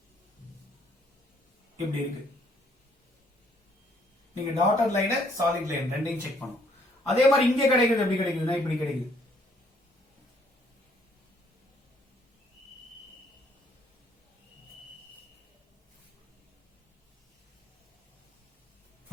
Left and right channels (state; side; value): normal; both; correlation 0.66